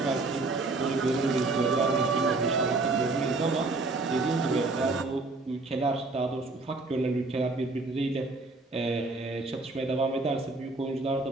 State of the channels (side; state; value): left; quieter; 3.4 dB